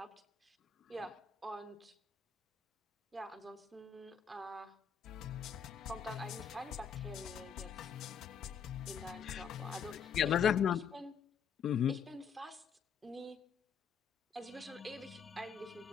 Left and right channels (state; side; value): quieter; right; 7.0 dB